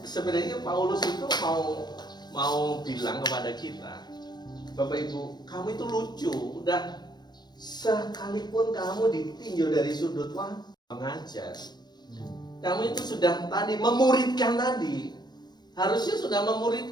sebenarnya Paulus itu mau bilang kepada kita, Bapak Ibu, kamu itu lucu, udah sekalipun kamu ditinjau dari sudut mengajar, kamu itu sudah tadi memuridkan tadi, harusnya sudah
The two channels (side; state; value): right; late; 0.20 ms